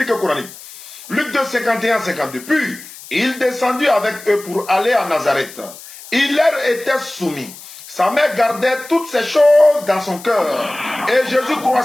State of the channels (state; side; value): noise; left; hiss, 17 dB below the sound